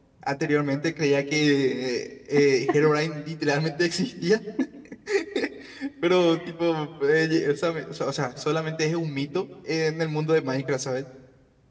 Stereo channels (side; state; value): both; identical; correlation 1.00